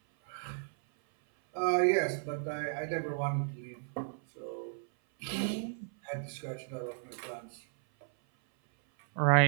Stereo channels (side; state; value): left; silent; 55 dB below the other